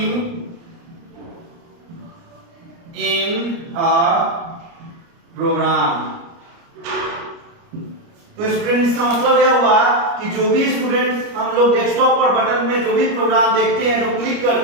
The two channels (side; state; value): left; late; 29 ms